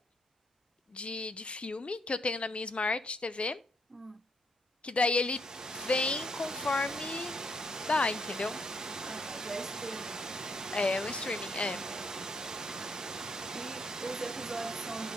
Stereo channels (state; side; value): normal; both; correlation 0.72